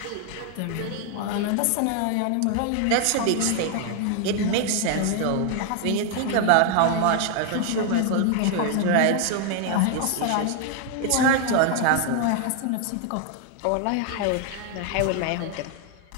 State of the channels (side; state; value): both; different; correlation 0.00